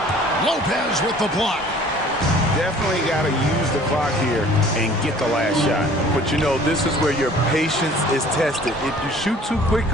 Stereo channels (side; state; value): both; normal; correlation 0.51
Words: Lopez with the block. Definitely got to use the clock here and get the last shot. But you know, this is where your patience is tested. If you shoot too